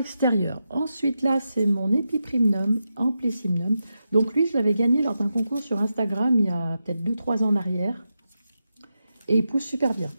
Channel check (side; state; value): both; inverted; correlation -0.88